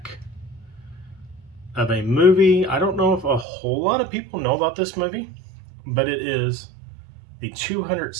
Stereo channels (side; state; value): left; drops out; at 3.5 s